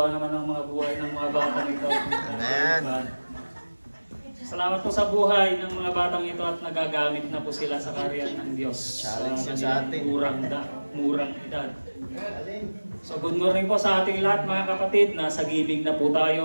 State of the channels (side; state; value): both; inverted; correlation -1.00